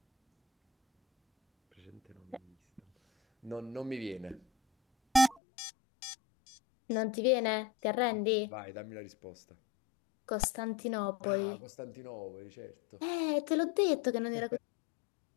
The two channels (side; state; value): right; drops out; at 5.4 s